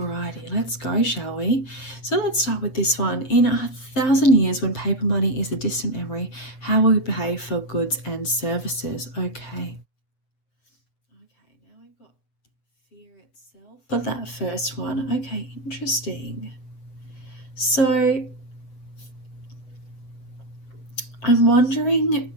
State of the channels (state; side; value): late; right; 7.9 ms